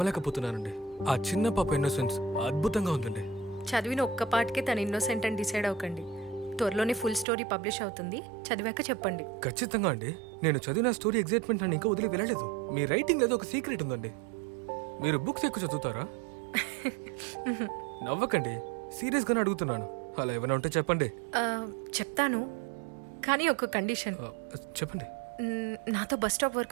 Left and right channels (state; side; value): drops out; left; at 7.2 s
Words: ఆ చిన్న పాప ఇన్నోసెన్స్ అద్భుతంగా ఉందండి. చదివిన ఒక్క పాటకే తను ఇన్నోసెంట్ అని డిసైడ్ అవ్వకండి. త్వరలోనే ఫుల్ స్టోరీ పబ్లిష్ అవుతుంది, చదివాక చెప్పండి. ఖచ్చితంగా అండి. నేను చదివిన స్టోరీ ఎగ్జైట్మెంట్ నన్ను ఇంకా వదిలి వెళ్ళలేదు. మీ రైటింగ్ ఏదో ఒక సీక్రెట్ ఉందండి. మీరు బుక్స్ ఎక్కువ చదువుతారా? నవ్వకండి, సీరియస్గానే అడుగుతున్నాను. అలా ఏమైనా ఉంటే చెప్పండి. చెప్తాను, కానీ ఒక కండిషన్. చెప్పండి. నాతో బస్ స్టాప్